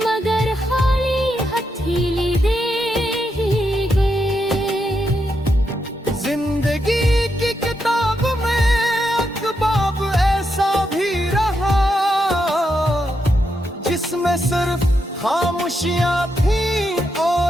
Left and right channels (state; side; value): normal; both; correlation 0.83